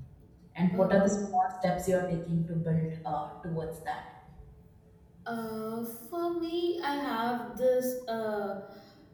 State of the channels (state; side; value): identical; both; correlation 1.00